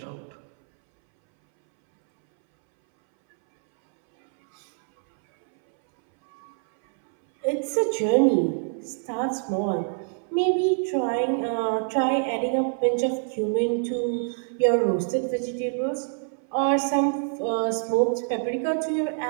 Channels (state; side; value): silent; left; 62 dB below the other